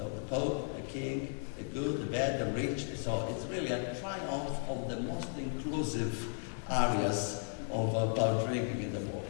the Pope, the King, the good, the bad, the rich. So it's really a triumph of the most inclusive areas about drinking in the world.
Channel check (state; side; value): silent; right; 54 dB below the other